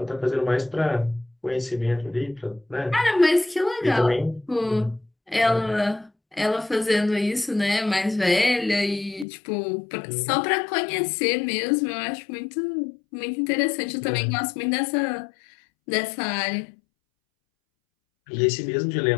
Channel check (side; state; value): right; drops out; at 9.2 s